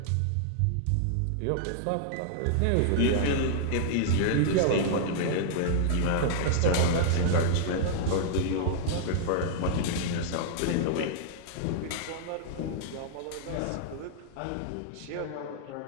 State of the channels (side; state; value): both; different; correlation -0.01